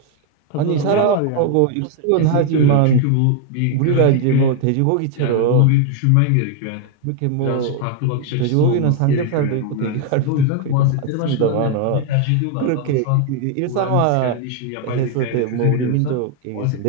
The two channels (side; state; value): both; different; correlation 0.00